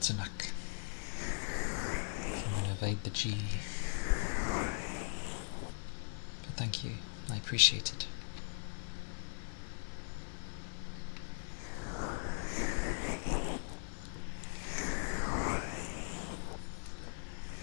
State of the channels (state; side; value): silent; right; 51 dB below the other